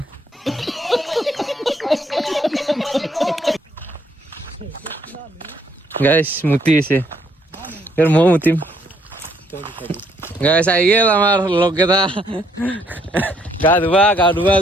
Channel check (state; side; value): normal; both; correlation 0.69